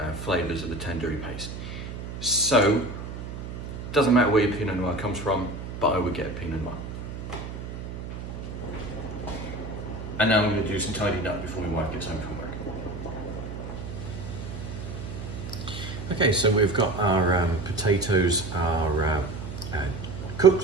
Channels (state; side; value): noise; right; hum, 8 dB below the sound